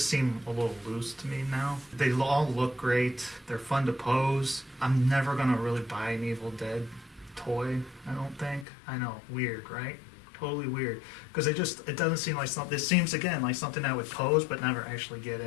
seem a little loose to me now. They all look great. They're fun to pose. I'm never going to really buy an Evil Dead toy, I don't think. I know, weird, right? Totally weird. Because it doesn't seem like something, it seems again like something I would pose but never actually get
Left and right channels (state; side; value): drops out; right; at 8.7 s